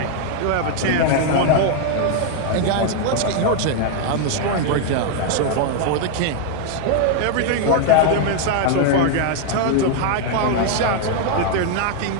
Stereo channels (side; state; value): both; different; correlation 0.00